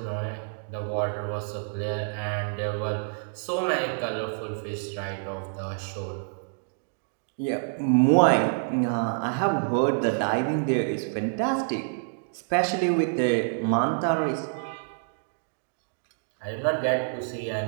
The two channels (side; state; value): left; silent; digital silence